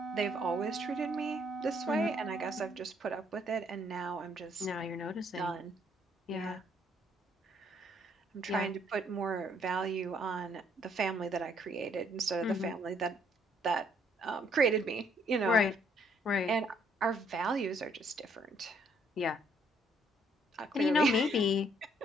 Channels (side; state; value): both; normal; correlation 0.67